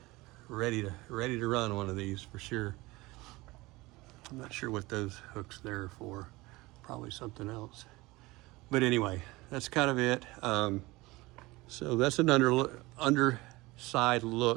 ready to run one of these for sure. I'm not sure what those hooks there are for. Probably something else. But anyway, that's kind of it. So that's an underside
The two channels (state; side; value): quieter; left; 21.3 dB